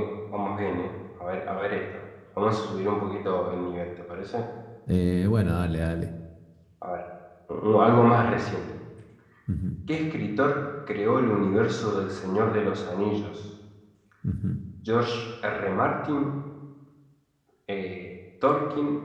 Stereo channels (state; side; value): identical; both; correlation 1.00